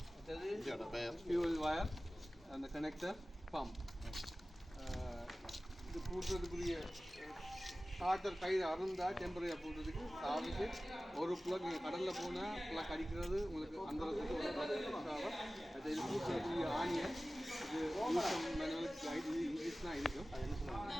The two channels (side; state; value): both; normal; correlation 0.96